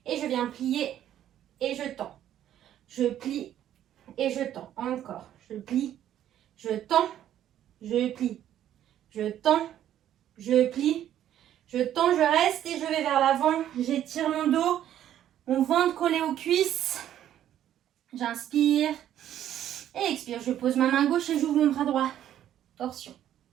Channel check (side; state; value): left; quieter; 11.3 dB